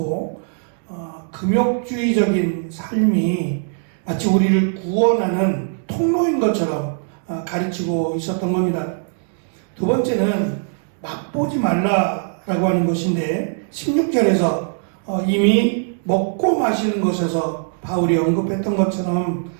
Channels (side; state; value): left; silent; 65 dB below the other